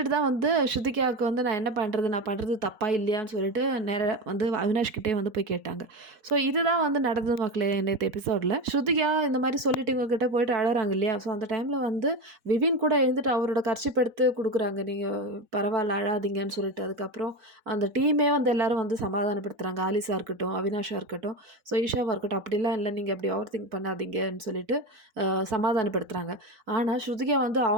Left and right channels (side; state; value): left; late; 4.2 ms